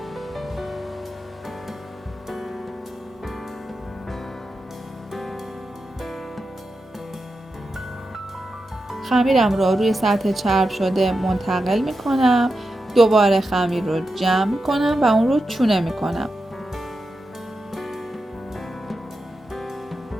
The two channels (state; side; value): normal; both; correlation 0.89